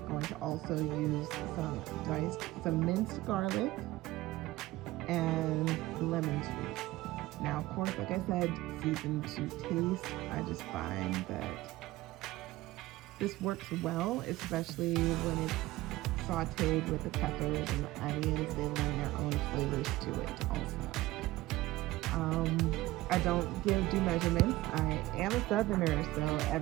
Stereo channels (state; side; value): quieter; left; 17.9 dB